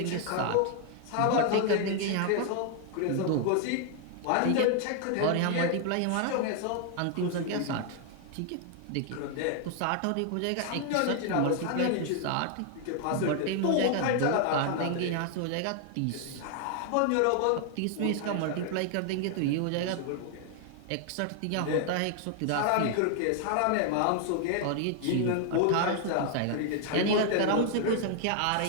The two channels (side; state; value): both; different; correlation 0.00